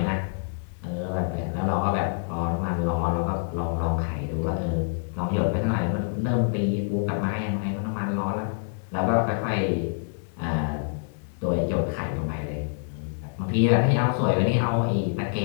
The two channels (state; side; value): silent; right; digital silence